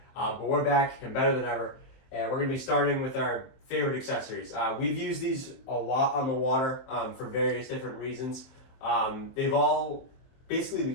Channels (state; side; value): late; right; 23 ms